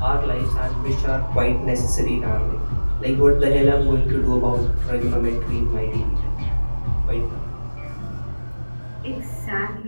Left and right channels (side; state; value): both; inverted; correlation -1.00